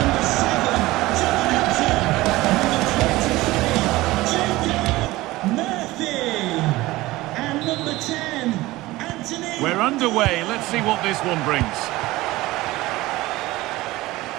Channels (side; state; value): left; quieter; 18.8 dB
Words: We're underway. Let's see what this one brings.